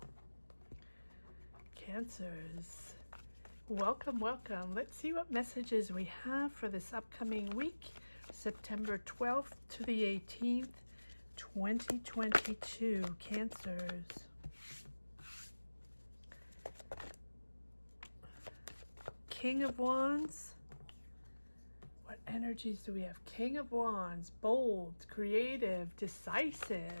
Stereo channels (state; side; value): inverted; both; correlation -1.00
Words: Cancers, welcome. Let's see what messages we have for this upcoming week, September 12th to the 18th, 2022. Cancers. King of Wands. What energies do we have? King of Wands, bold, creative,